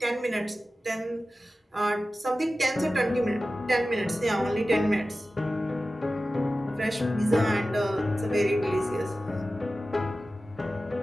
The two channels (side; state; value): both; normal; correlation 0.95